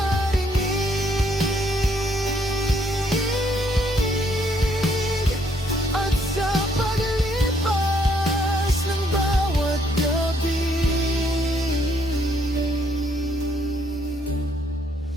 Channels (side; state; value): both; normal; correlation 0.70